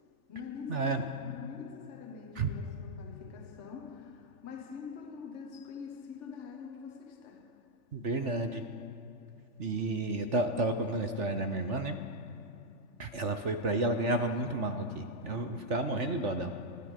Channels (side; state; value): left; late; 3.4 ms